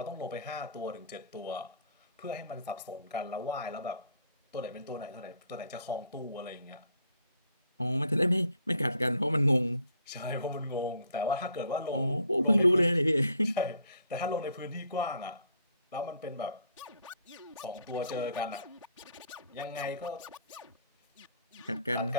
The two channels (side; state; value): both; inverted; correlation -0.62